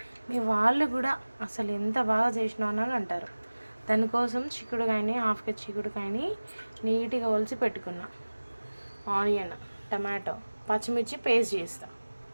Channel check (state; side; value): inverted; both; correlation -1.00